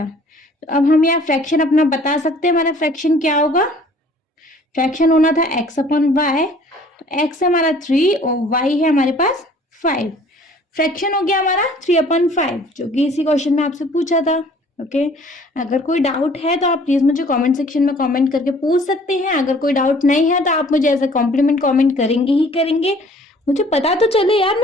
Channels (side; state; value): both; normal; correlation 0.54